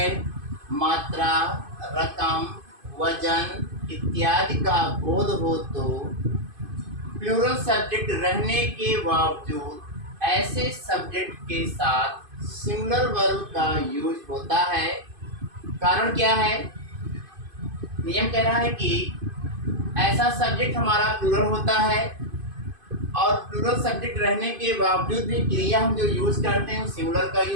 मात्रा, रकम, वजन इत्यादि का बोध हो तो प्लूरल सब्जेक्ट रहने के बावजूद ऐसे सब्जेक्ट के साथ सिंगुलर वर्ब का यूज होता है। कारण क्या है? नियम कह रहा है कि ऐसा सब्जेक्ट हमारा प्लूरल होता है और प्लूरल सब्जेक्ट रहने के बावजूद भी क्रिया हम जो यूज करते हैं सिंगुलर का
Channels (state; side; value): late; left; 2.5 ms